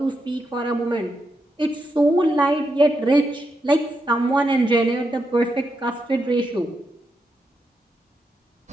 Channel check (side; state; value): both; normal; correlation 0.84